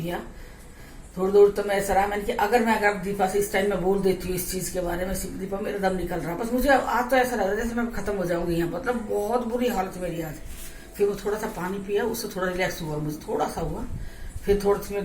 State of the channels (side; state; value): both; identical; correlation 1.00